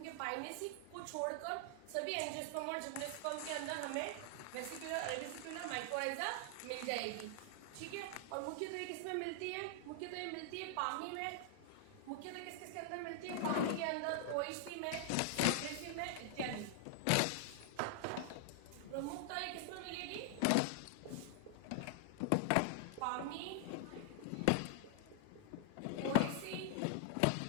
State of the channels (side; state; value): both; different; correlation -0.01